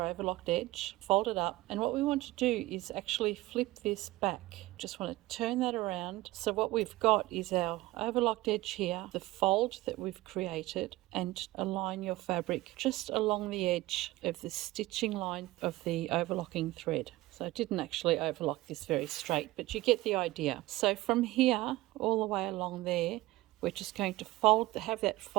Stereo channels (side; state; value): left; quieter; 18.6 dB